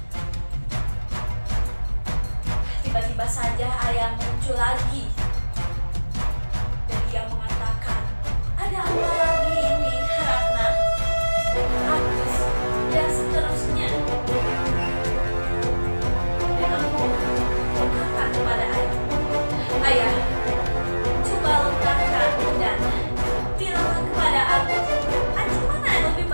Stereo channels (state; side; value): inverted; both; correlation -1.00